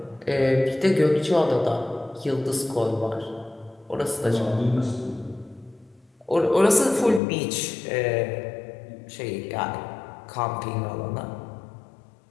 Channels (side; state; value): right; drops out; at 7.2 s